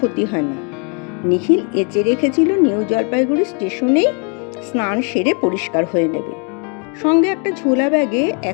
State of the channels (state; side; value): quieter; right; 37.4 dB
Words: হয় না। নিখিল এঁচে রেখেছিল নিউ জলপাইগুড়ি স্টেশনেই স্নান সেরে পরিষ্কার হয়ে নেবে। সঙ্গে একটা ঝোলা ব্যাগে